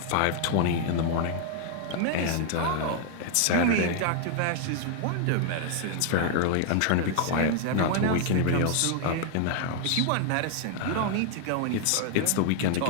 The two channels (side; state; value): both; different; correlation 0.00